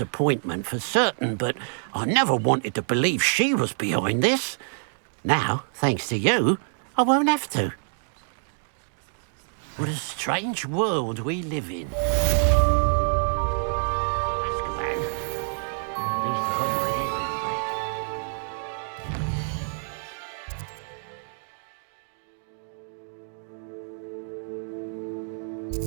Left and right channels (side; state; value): left; silent; digital silence